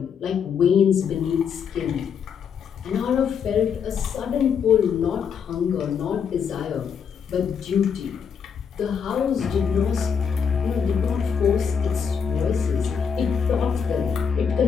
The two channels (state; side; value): quieter; right; 6.9 dB